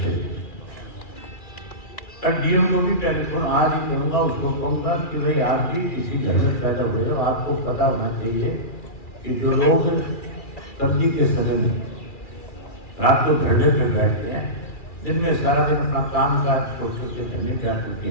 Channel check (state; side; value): late; right; 2.3 ms